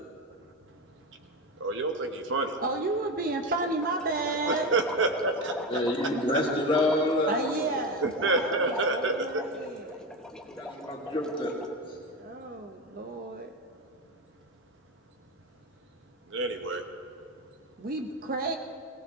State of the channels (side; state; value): both; normal; correlation 0.19